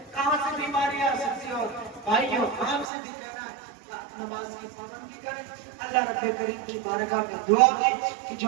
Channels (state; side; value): drops out; left; at 2.9 s